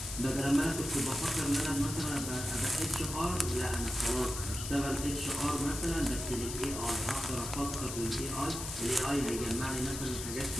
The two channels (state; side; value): noise; left; hiss, 7 dB below the sound